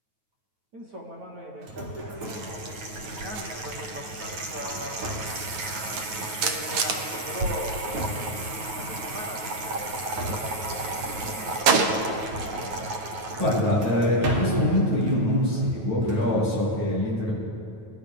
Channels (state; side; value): late; left; 9.2 ms